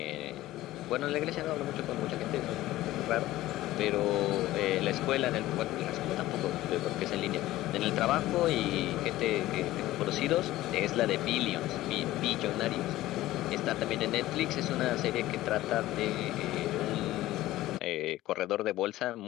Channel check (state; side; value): quieter; right; 16.0 dB